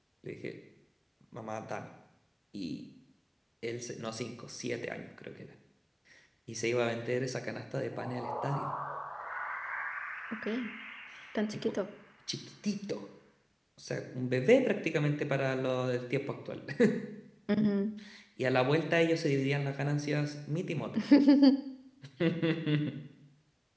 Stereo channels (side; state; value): both; identical; correlation 1.00